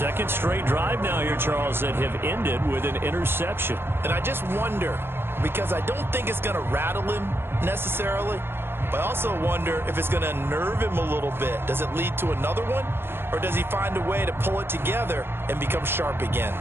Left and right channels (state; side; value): late; left; 0.11 ms